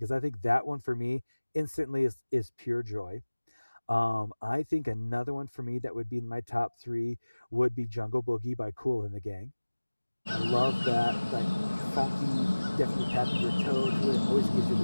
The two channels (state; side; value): inverted; both; correlation -1.00